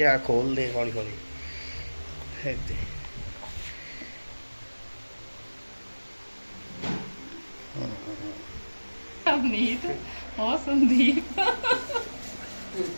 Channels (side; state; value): both; inverted; correlation -1.00